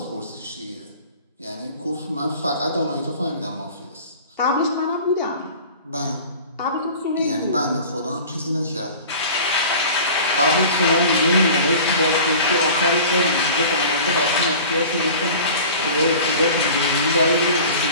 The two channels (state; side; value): inverted; both; correlation -0.41